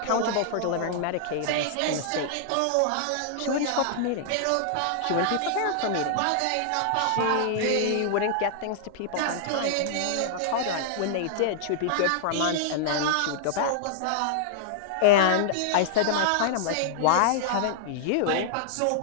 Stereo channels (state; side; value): different; both; correlation -0.01